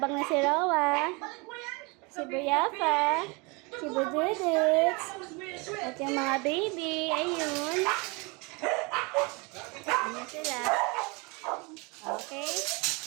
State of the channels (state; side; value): quieter; left; 28.7 dB